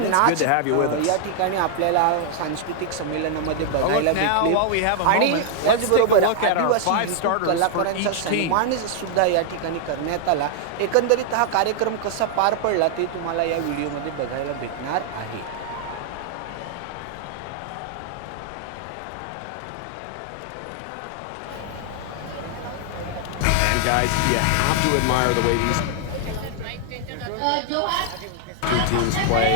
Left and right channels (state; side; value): different; both; correlation 0.00